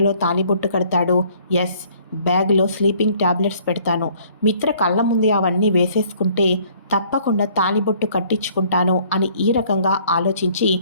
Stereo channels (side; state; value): both; inverted; correlation -0.59